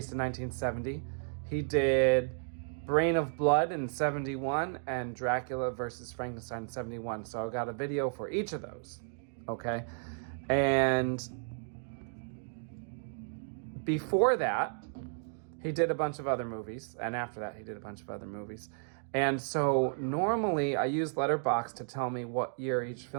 in 1970. He did Brain of Blood in 71 and Dracula versus Frankenstein in 71. So I got a video for each of those. Okay. And before that, he did a bunch of other movies. And after that, he did a bunch of other movies. And so normally I use Letterboxd to tell me what year each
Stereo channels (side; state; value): left; silent; digital silence